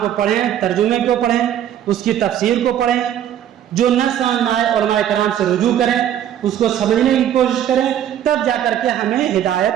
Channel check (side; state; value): left; quieter; 10.6 dB